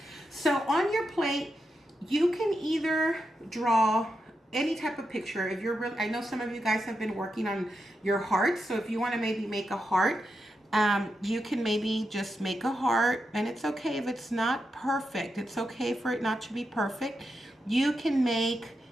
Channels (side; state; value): both; normal; correlation 0.86